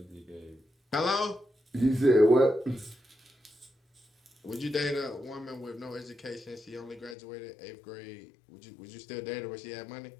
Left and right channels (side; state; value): right; drops out; at 7.2 s